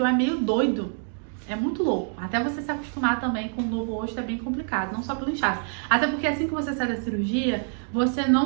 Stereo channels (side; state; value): left; silent; 61 dB below the other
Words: é meio doido. É muito louco. Até você se acostumar também com o novo rosto é bem complicado, não só pelo inchaço. Até porque assim que você sai da cirurgia, você